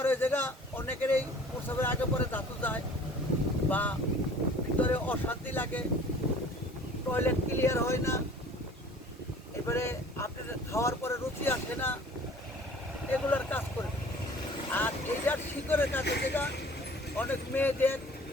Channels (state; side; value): normal; both; correlation 0.49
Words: হয়ে জায়গা অনেকের এই প্রসবের আগে পরে ধাতু যায় বা ভিতরে অশান্তি লাগে, টয়লেট ক্লিয়ার হয় না, এবারে আপনার খাওয়ার পরে রুচি আসে না, এগুলোর কাজ করে। আর এইটার শিকড়ের কাছে যেটা অনেক মেয়েদের